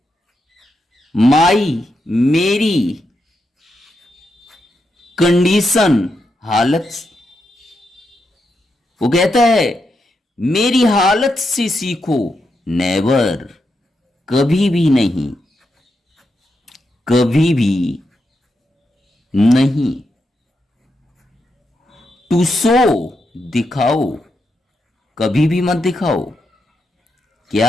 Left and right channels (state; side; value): normal; both; correlation 0.84